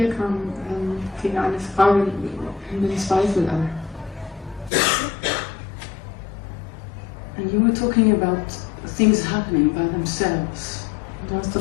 kam, fing eine Frage mit dem Zweifel an. And you were talking about things happening by themselves. Und du hast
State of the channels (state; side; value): drops out; right; at 4.7 s